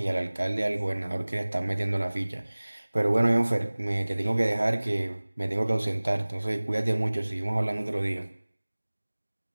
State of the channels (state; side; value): inverted; both; correlation -1.00